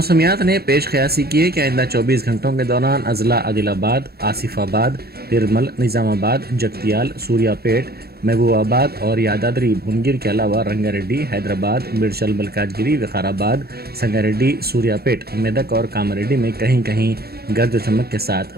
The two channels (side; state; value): left; late; 0.46 ms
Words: ने पेश क़यासी की है कि आइंदा 24 घंटों के दौरान अजला आदिलाबाद, आसिफाबाद, निर्मल, निज़ामाबाद, जगतियाल, सूर्यापेट, महबूबाबाद और यादाद्री भुवनगिर के अलावा रंगारेड्डी, हैदराबाद, मिर्चल, मलकाजगिरी, विकाराबाद, संगारेड्डी, सूर्यापेट, मेदक और कामारेड्डी में कहीं कहीं गर्ज चमक के